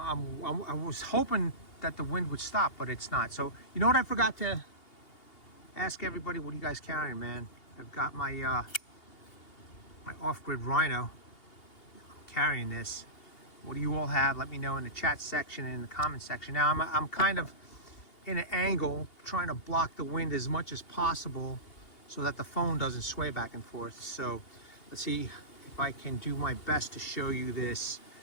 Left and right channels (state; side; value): late; right; 2.8 ms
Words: was hoping that the wind would stop, but it's not. So you know what I forgot to ask everybody? What are you guys carrying, man? I've got my my off-grid Rhino. I'm carrying this. What do you all have? Let me know in the chat section and in the comment section. Now I'm kind of in an angle, trying to block the wind as much as possible so that the phone doesn't sway back and forth. So let's see if I can do my best to show you this